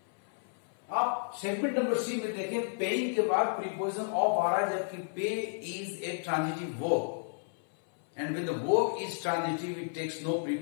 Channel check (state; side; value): silent; right; 56 dB below the other